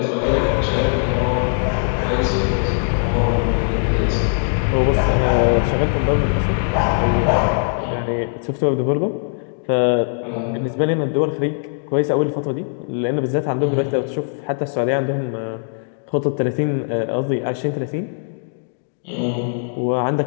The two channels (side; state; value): right; silent; digital silence